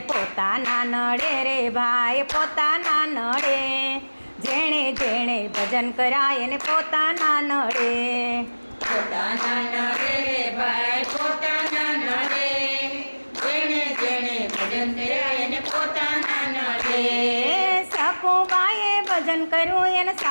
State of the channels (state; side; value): inverted; both; correlation -1.00